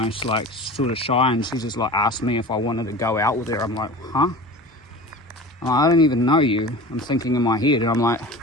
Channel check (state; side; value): normal; both; correlation 0.36